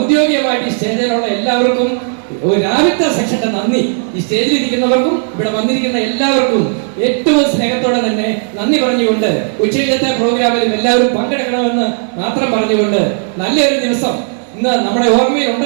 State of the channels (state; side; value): silent; left; digital silence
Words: ഈ സ്റ്റേജിലുള്ള എല്ലാവർക്കും രാവിലത്തെ സെക്ഷന്റെ നന്ദി. ഈ സ്റ്റേജിൽ ഇരിക്കുന്നവർക്കും ഇവിടെ വന്നിരിക്കുന്ന എല്ലാവർക്കും ഏറ്റവും സ്നേഹത്തോടെ തന്നെ നന്ദി പറഞ്ഞുകൊണ്ട് ഉച്ചയിലത്തെ പ്രോഗ്രാമിൽ എല്ലാവരും പങ്കെടുക്കണമെന്ന് മാത്രം പറഞ്ഞുകൊണ്ട് നല്ലൊരു ദിവസം ഇന്ന് നമ്മുടെ ഓർമ്മയിൽ